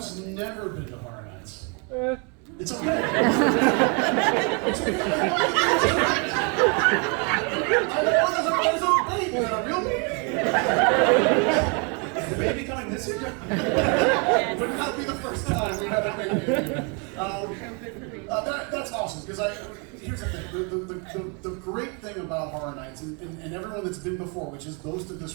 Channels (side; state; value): left; quieter; 33.9 dB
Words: never been to Horror Nights? It's okay. It's okay. There's a baby, a real baby. Is the baby coming this year? Would not be the first time we have a baby. That's awesome, because here's the thing. The great thing about Horror Nights, and everyone that's been before, which is most of